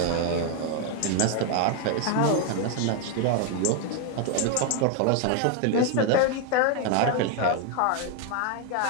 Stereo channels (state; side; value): different; both; correlation 0.01